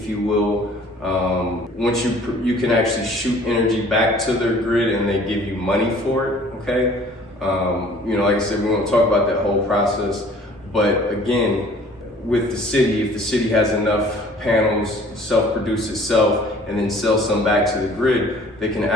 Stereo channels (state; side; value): normal; both; correlation 0.52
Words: you will. Once you can actually shoot energy back to their grid and they give you money for it, okay? Like I said, we won't talk about that whole process, but again, with the city, if the city has enough panels, self-produce itself, and then sell some back to the grid, they can